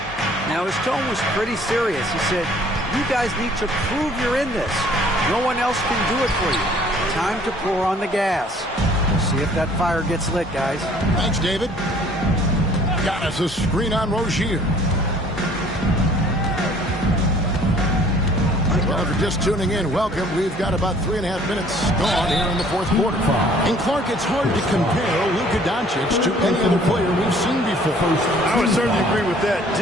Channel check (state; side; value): normal; both; correlation 0.56